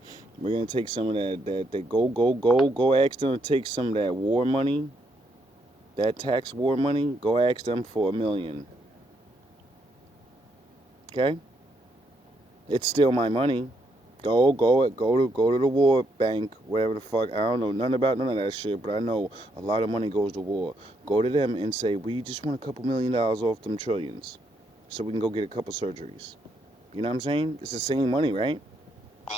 We're gonna take some of that go ask them to take some of that war money, that tax war money, go ask them for $1 million. Okay? It's still my money. Go to the war bank, whatever the fuck. I don't know nothing about none of that shit, but I know a lot of money goes to war. Go to them and say, we just want a couple $1 million off them trillions, so we can go get a couple surgeries. You know what I'm saying? It's the same money, right?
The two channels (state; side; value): normal; both; correlation 0.75